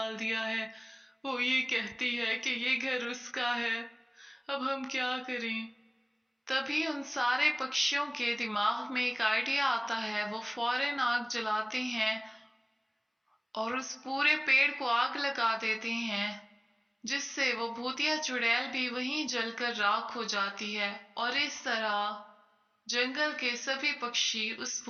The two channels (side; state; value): both; identical; correlation 1.00